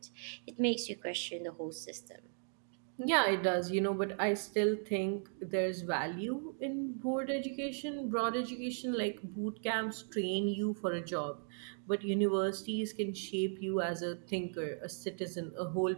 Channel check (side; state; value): left; silent; 53 dB below the other